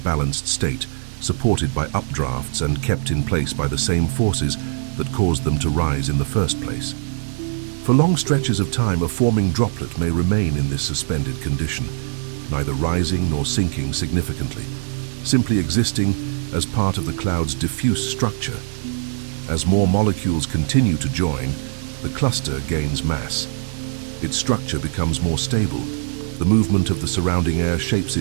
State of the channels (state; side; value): silent; left; digital silence